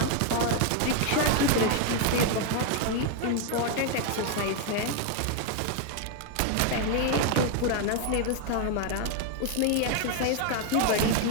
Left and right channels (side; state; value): both; different; correlation 0.01